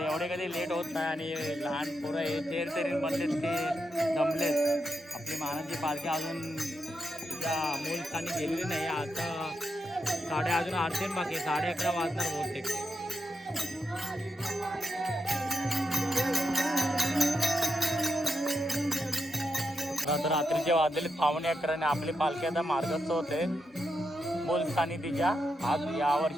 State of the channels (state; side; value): normal; both; correlation 0.85